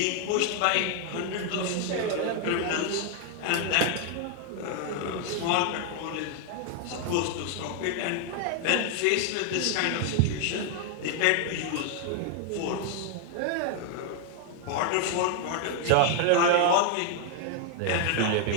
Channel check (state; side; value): different; both; correlation 0.00